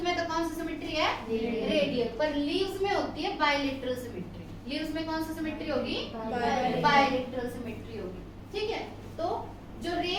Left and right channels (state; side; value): identical; both; correlation 1.00